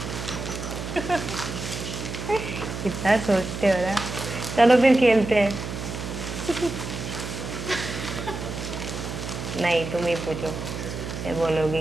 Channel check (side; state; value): right; noise; hum, 6 dB below the sound